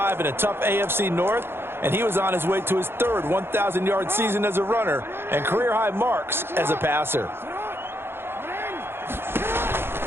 in a tough AFC North, and he was on his way to his third 1,000-yard season as a runner and career-high marks as a passer.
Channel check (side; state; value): left; late; 0.11 ms